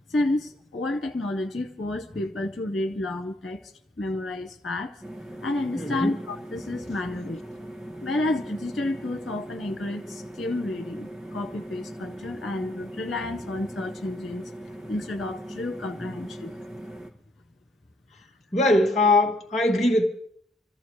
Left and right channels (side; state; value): both; normal; correlation 0.70